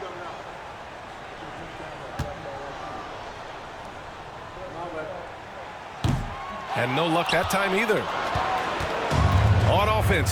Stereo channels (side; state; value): both; identical; correlation 1.00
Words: And no luck that time either. On offense,